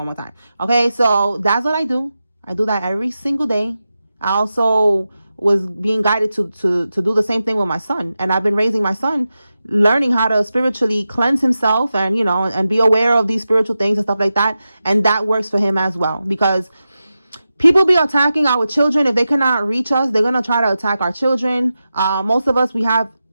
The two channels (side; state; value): both; inverted; correlation -0.92